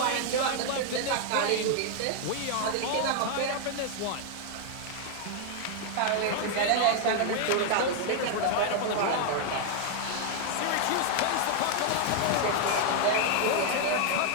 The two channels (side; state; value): both; different; correlation 0.00